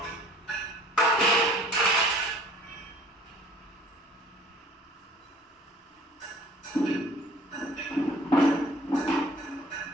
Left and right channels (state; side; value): normal; both; correlation 0.52